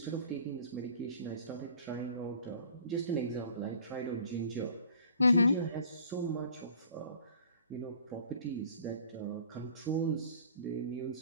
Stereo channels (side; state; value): both; inverted; correlation -0.50